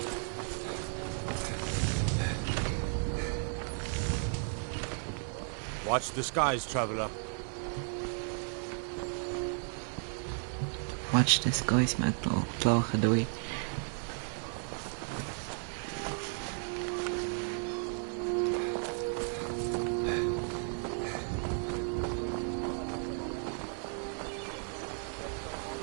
Watch the skies, traveler. Watch the skies, maakt al klagen doei.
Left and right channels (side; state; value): left; silent; 55 dB below the other